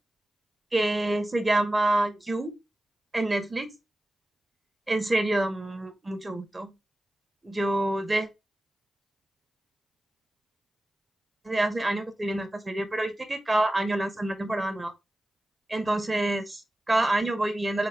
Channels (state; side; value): normal; both; correlation 0.95